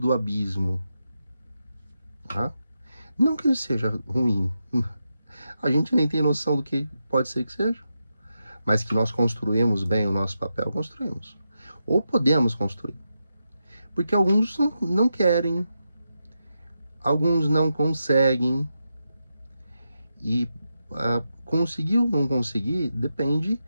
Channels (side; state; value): both; inverted; correlation -0.87